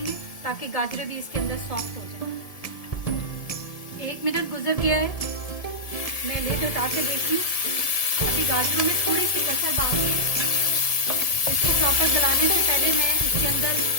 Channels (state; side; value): late; right; 1.7 ms